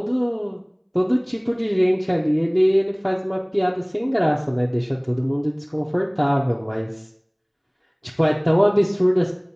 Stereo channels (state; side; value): identical; both; correlation 1.00